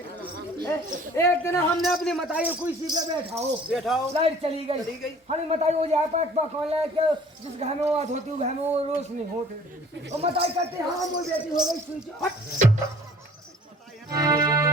एक दिन हमने अपनी मताई को इसी पे बैठाओ लाइट चली गई। हमें मताई हो जाए पास कौन लाए के जिस घर में वो बात होती है घर में वो रोज नहीं होते। और मताई कहते हाँ वो बेटी हो गई स्विच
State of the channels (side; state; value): both; normal; correlation 0.51